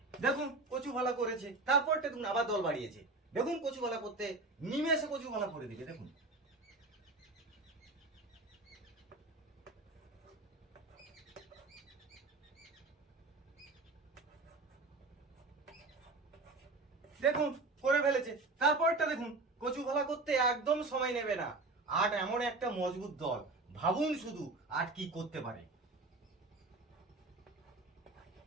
দেখুন কচু ভালা করেছে, তারপরটা দেখুন আবার দল বাড়িয়েছে। দেখুন কচু ভালা করতে নিমেষে কচু ভালা করে দিবে। দেখুন দেখুন করে ফেলেছে। তারপরটা দেখুন কচু ভালা করতে একদম সময় নেবে না। 8 এমন একটা মজবুত দল, ভাবুন শুধু 8 কি করতে পারে।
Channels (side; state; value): left; quieter; 3.3 dB